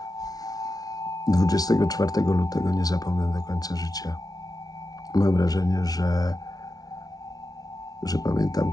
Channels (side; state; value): right; late; 0.18 ms